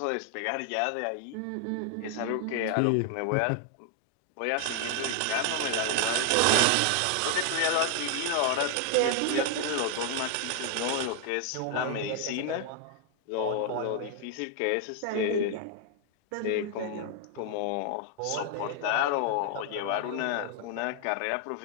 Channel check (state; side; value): different; both; correlation 0.00